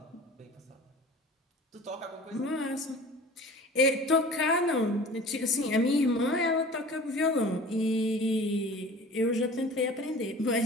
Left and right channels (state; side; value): normal; both; correlation 0.42